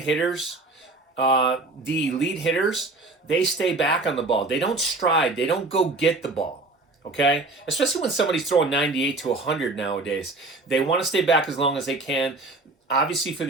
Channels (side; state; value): left; quieter; 3.2 dB